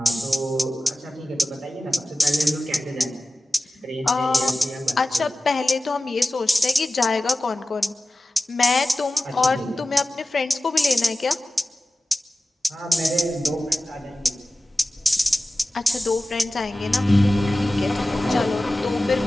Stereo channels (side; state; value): both; normal; correlation 0.96